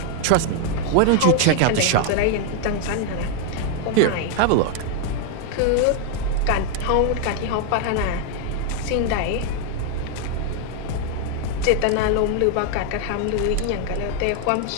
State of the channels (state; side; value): different; both; correlation 0.00